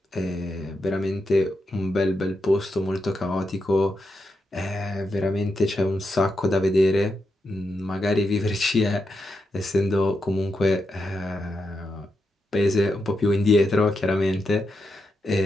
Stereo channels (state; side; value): normal; both; correlation 0.85